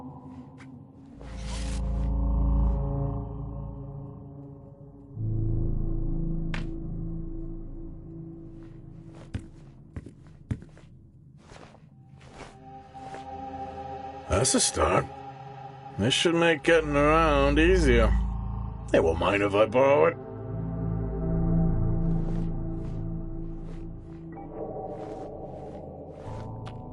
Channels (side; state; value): both; identical; correlation 1.00